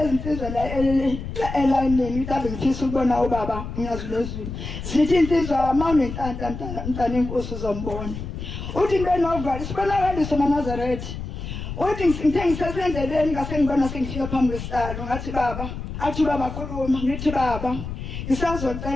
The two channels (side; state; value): left; noise; rumble, 7 dB below the sound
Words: insizwa la elayinini mhlawumbe ngifisa ukubona ubaba ngiyazulezulu zithi insizwa mawunenhlanhla mntana inkosi uzombona uthi ngibenovalo sibonakaliso eNazaretha uthi ngithe ngisesendleleni ngase ngibona sengifika phambi kwesihlalo ngathi baba athi baba khuluma ngithi baba